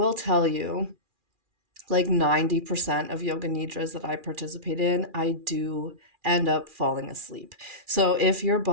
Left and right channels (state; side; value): late; left; 2.4 ms